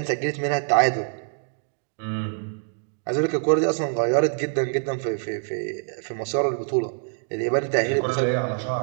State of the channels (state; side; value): silent; left; digital silence